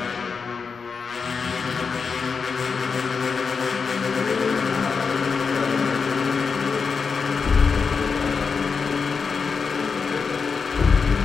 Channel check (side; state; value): right; quieter; 5.3 dB